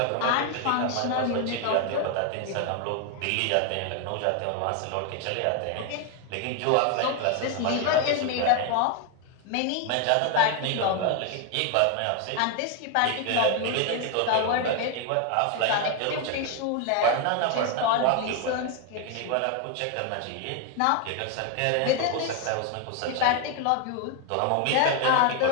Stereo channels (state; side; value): different; both; correlation 0.01